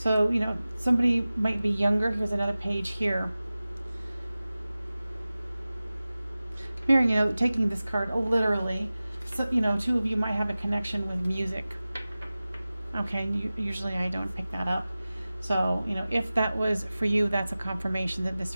somebody might be younger. Here's another page here. Hearing, taking this card literally. So, 2 of you might have a connection with music. Okay, usually I don't pick that up. So, if that was for you, that's a confirmation that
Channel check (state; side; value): inverted; both; correlation -0.97